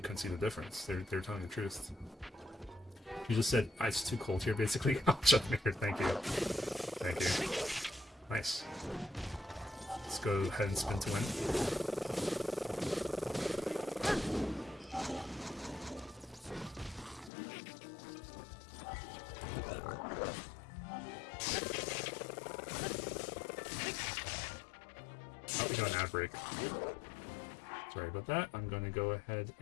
see the difference. They're telling the truth. You just said it's too cold here, basically. Oh, Chuckmaker, thank you, thank you, nice. Let's go ahead and spin to win. Break. Sorry about that. I'm going to go ahead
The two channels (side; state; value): right; drops out; at 17.3 s